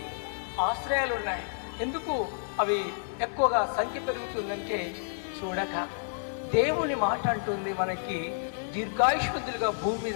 ఆశ్రయాలు ఉన్నాయి. ఎందుకు అవి ఎక్కువగా సంఖ్య పెరుగుతుందంటే చూడక దేవుని మాట అంటుంది మనకి దీర్ఘాయుష్మంతులుగా భూమి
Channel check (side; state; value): right; silent; digital silence